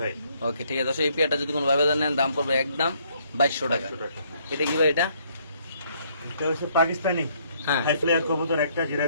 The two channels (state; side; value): inverted; both; correlation -0.67